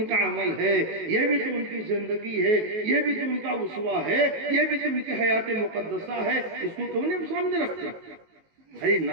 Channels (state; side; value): late; left; 19 ms